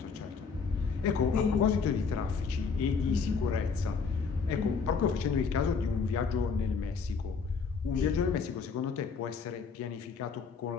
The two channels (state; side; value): quieter; right; 5.4 dB